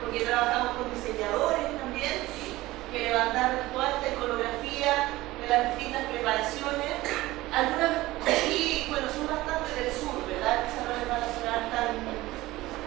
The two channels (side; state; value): left; quieter; 18.2 dB